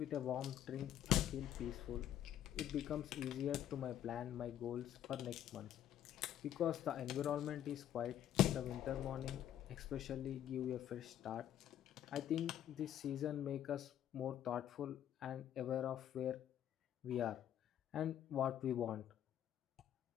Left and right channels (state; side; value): quieter; right; 11.1 dB